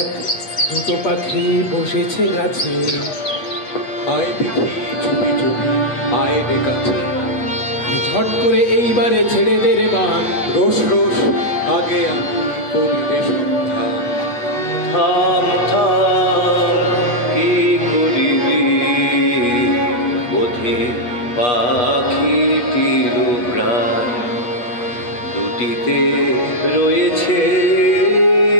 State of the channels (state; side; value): late; right; 8.2 ms